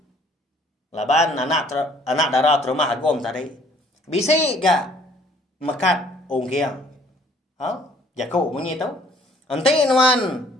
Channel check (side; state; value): both; normal; correlation 0.59